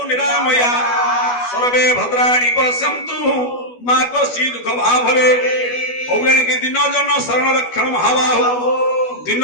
निरामया सर्वे भद्राणि पश्यन्तु मा कश्चित् दुःख भाभवे औगणिके दिन जन शरण रक्षण महाबाहु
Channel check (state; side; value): late; right; 12 ms